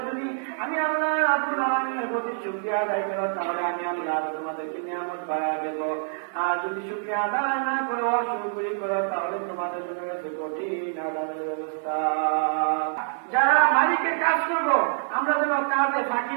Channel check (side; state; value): left; silent; 61 dB below the other